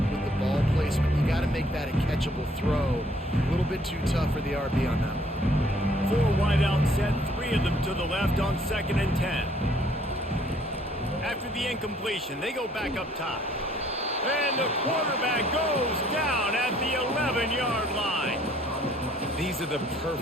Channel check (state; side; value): normal; both; correlation 0.62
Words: with the ball placement. You got to make that a catchable throw. A little bit too tough for the RB on that one. 4 wide out set, 3 of them to the left on 2nd and 10. After the incompletion, they go back up top. And the quarterback goes down at the 11-yard line. These are the